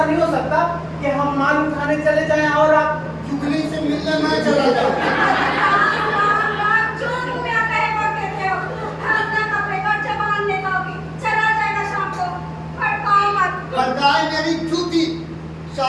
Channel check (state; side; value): identical; both; correlation 1.00